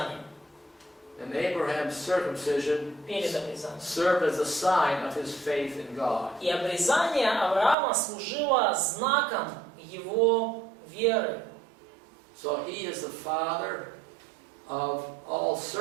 And Abraham's circumcision Перед обрезанием. served as a sign of his faith in God. И обрезание Авраама служило знаком его веры. So he is the father of all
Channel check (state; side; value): drops out; left; at 7.8 s